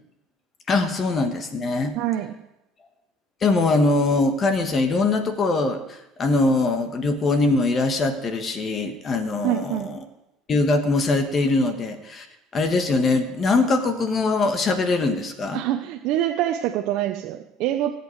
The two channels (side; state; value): both; normal; correlation 0.59